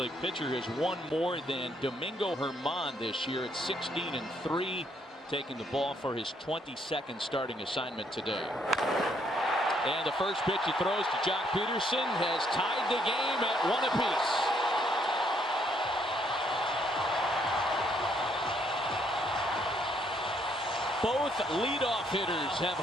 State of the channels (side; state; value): both; normal; correlation 0.70